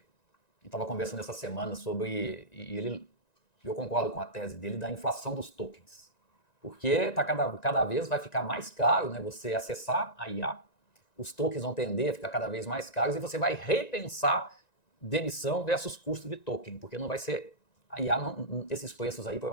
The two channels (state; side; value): late; right; 1.9 ms